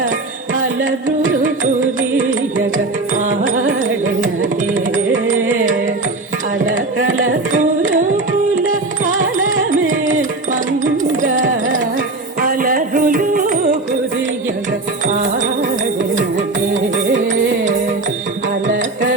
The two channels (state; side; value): quieter; left; 3.2 dB